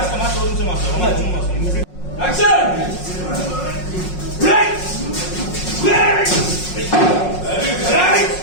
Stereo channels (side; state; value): right; late; 5.5 ms